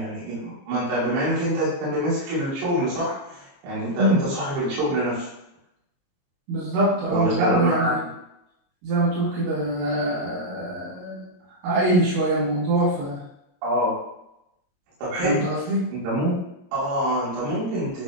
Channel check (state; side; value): late; left; 22 ms